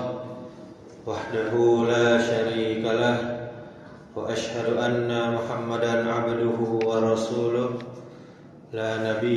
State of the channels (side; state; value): both; identical; correlation 1.00